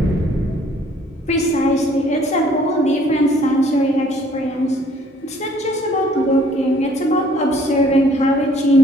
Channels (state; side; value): normal; both; correlation 0.59